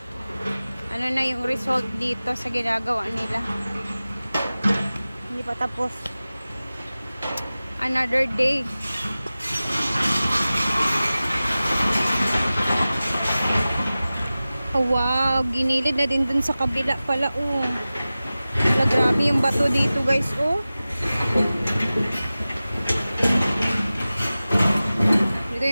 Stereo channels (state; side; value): inverted; both; correlation -0.96